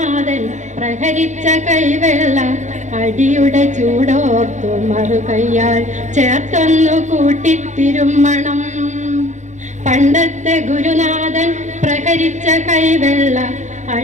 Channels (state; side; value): late; left; 0.35 ms